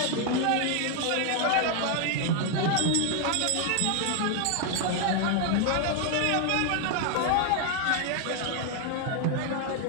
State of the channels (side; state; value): both; different; correlation 0.00